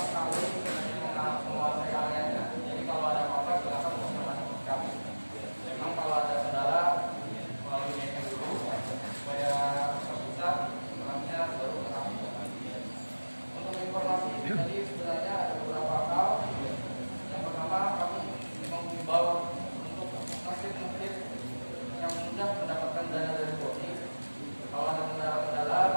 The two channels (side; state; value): both; inverted; correlation -1.00